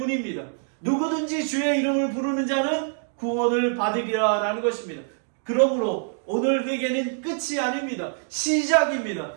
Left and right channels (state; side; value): silent; left; digital silence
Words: 누구든지 주의 이름을 부르는 자는 구원을 받으리라 라는 것입니다. 그러므로 오늘 회개는 끝이 아닙니다. 시작입니다.